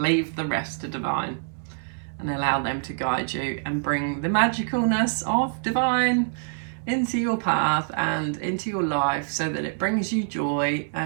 the rest to divine, and allow them to guide you and bring the magicalness of divine into your path and into your life, so that it brings you joy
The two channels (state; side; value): silent; left; 61 dB below the other